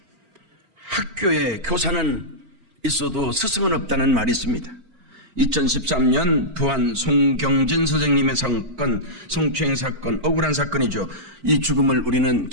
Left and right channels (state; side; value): late; left; 4.4 ms